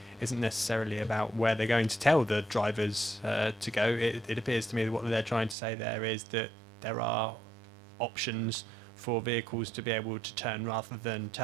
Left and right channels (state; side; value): drops out; left; at 5.6 s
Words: isn't necessarily about where they're going to tell the drivers to go. It appears to me that what they're trying to say there is that there are options for vehicles to be able to turn rather than